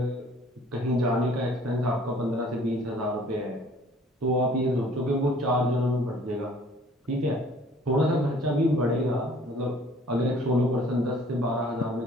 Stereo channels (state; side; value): normal; both; correlation 0.54